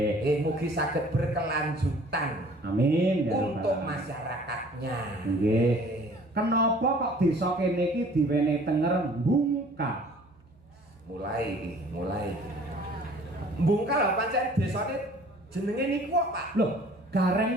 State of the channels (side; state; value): right; noise; hum, 29 dB below the sound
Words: Mugi saged berkelanjutan. Amin ya untuk masyarakatnya. Nggih. Kenapa kok desa kene iki diwenehi tenger Bungkal? Mulai. Bungkal pancen desane jenenge niku kok Pak. Loh,